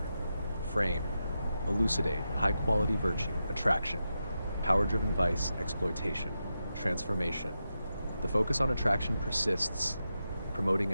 Frame, elucidate, high-quality virtue, attraction, power-driven vice, exploitation, transformation. The focus on attraction persists, promoting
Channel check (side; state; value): both; inverted; correlation -0.89